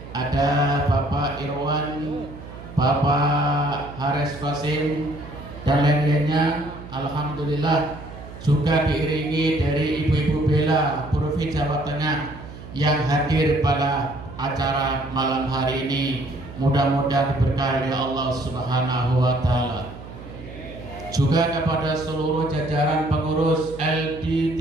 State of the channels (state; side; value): noise; right; hum, 14 dB below the sound